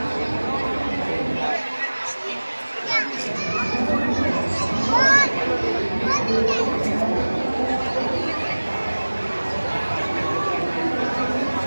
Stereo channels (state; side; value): inverted; both; correlation -1.00